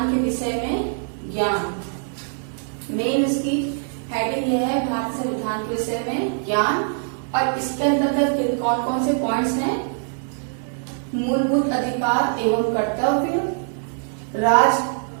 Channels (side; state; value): left; silent; 63 dB below the other